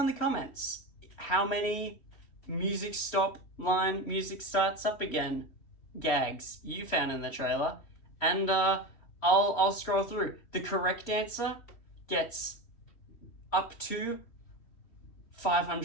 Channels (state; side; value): late; right; 3.1 ms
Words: in the comments how many music stop line, music starts up again gags you found in the trailer, and I'll scroll through. The correct answer gets up to